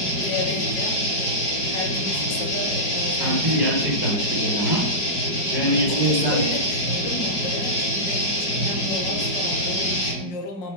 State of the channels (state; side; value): late; right; 4.9 ms